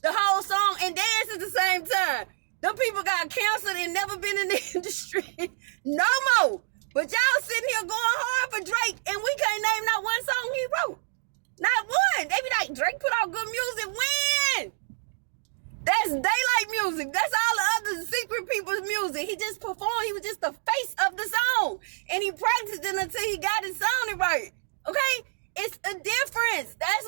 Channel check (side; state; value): left; silent; digital silence